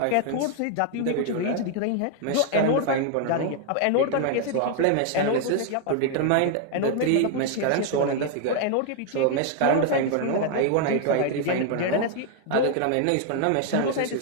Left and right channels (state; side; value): different; both; correlation 0.00